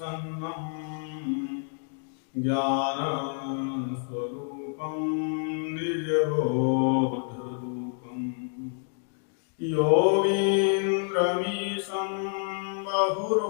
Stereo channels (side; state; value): right; silent; 59 dB below the other